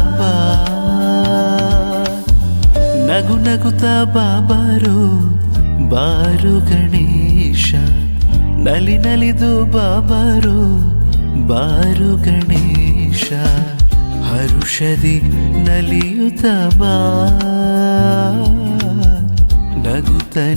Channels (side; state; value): both; inverted; correlation -1.00